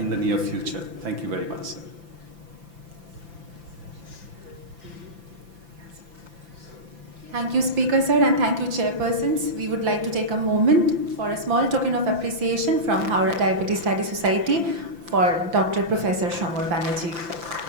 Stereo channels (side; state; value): left; late; 5.9 ms